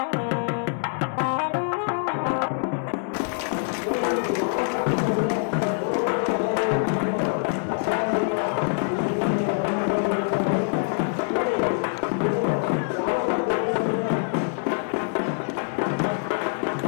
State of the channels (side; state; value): right; silent; 62 dB below the other